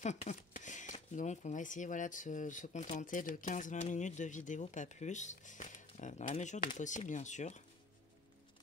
Donc on va essayer voilà, de se contenter de 15-20 minutes de vidéo, pas plus. Dans la mesure du possible, bien sûr.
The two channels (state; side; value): quieter; right; 3.3 dB